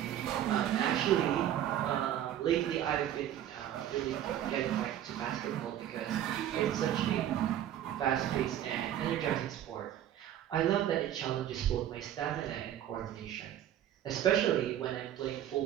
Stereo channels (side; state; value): left; quieter; 11.3 dB